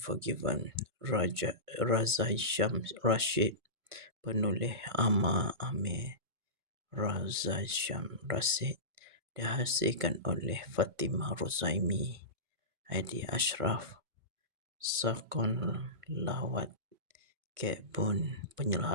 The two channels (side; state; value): left; late; 2.2 ms